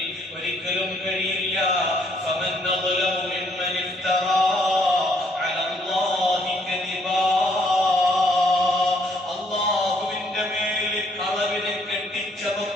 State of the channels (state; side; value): normal; both; correlation 0.67